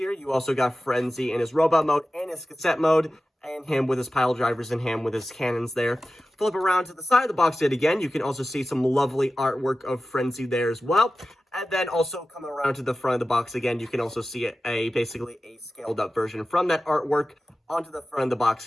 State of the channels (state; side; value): normal; both; correlation 0.94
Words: you also got Frenzy in his robot mode and his cassette mode, and him with his pile drivers and him with his cannons there. Flip around to the side of the box yet again, you can also see some lovely artwork of Frenzy there as well. And then also coming around to the front of the box again, you can also see basically a scaled up version from that artwork onto the front of the box